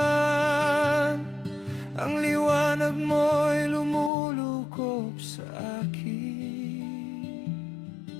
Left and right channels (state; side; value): drops out; right; at 4.1 s